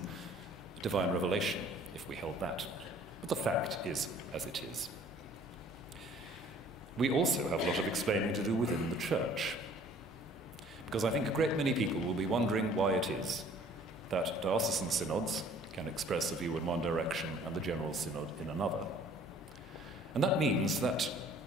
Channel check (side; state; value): both; normal; correlation 0.54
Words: divine revelation if we held that. But the fact is as it is. We also have a lot of explaining to do within the Church, because I think a great many people will be wondering why it is that diocesan synods can express a view in one direction and the General Synod in another. And that means that